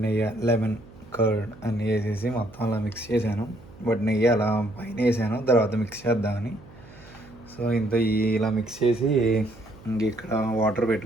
నెయ్యి, లెమన్ కర్డ్ అన్నీ వేసేసి మొత్తం అలా మిక్స్ చేశాను. బట్ నెయ్యి అలా పైన వేసాను, తర్వాత మిక్స్ చేద్దామని. సో ఇలా మిక్స్ చేసి ఇంక ఇక్కడ వాటర్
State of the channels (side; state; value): right; noise; hum, 21 dB below the sound